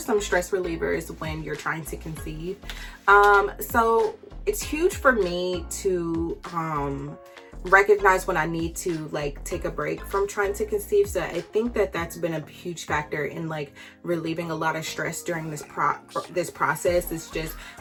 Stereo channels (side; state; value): both; identical; correlation 1.00